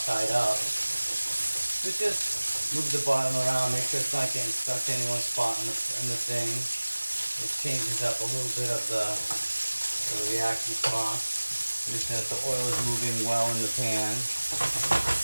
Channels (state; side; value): inverted; both; correlation -1.00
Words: up. But just move the bottom around, make sure it's not getting stuck in any one spot in the thing. It changes up a little bit of the reaction spot. Make sure that the oil is moving well in the pan.